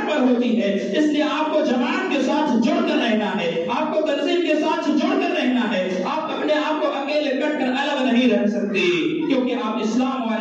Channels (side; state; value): both; identical; correlation 1.00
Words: پر ہوتی ہے. اس لیے آپ کو جماعت کے ساتھ جڑ کر رہنا ہے، آپ کو تنظیم کے ساتھ جڑ کر رہنا ہے. آپ اپنے آپ کو اکیلے کٹ کر الگ نہیں رہ سکتے، کیونکہ آپ اسلام